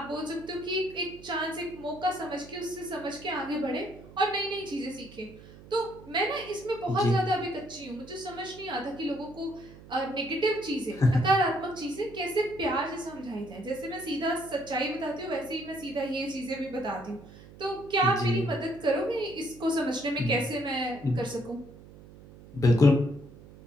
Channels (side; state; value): right; noise; hum, 19 dB below the sound